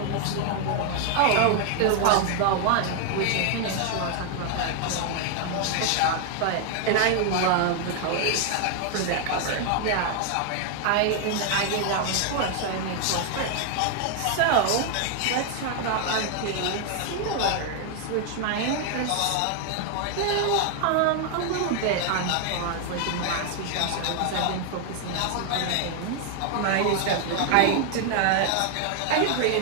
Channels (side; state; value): both; different; correlation 0.00